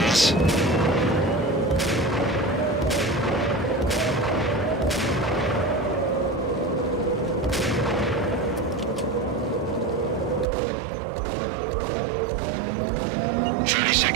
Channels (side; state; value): left; drops out; at 10.5 s